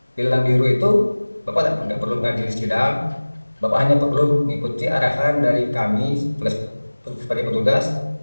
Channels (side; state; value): both; inverted; correlation -1.00